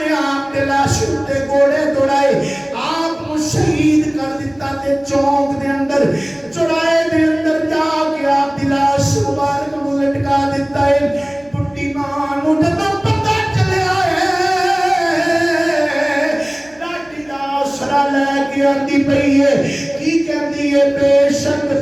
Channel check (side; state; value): right; noise; hum, 30 dB below the sound